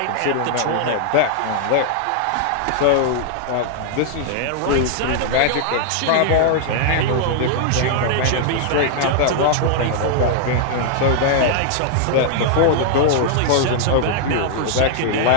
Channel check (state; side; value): different; both; correlation 0.00